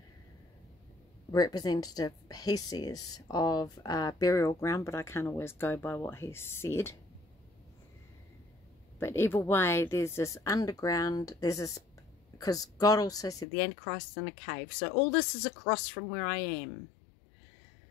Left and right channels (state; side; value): drops out; right; at 13.5 s